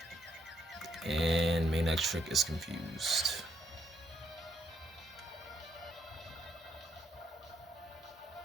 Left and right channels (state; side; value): normal; both; correlation 0.74